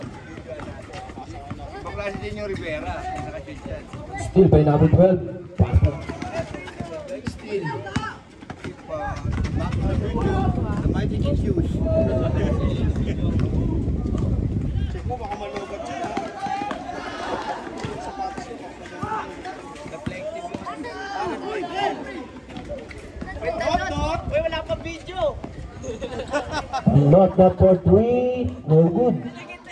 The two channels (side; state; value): both; identical; correlation 1.00